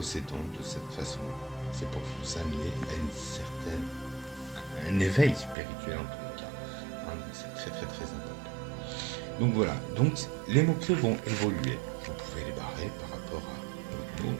de cette façon-là. C'est pour vous amener à un éveil spirituel en tous les cas. Hein, c'est très très très important. Donc voilà, donc les mots-clés vont évoluer. Vous pouvez les barrer par rapport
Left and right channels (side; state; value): left; drops out; at 5.6 s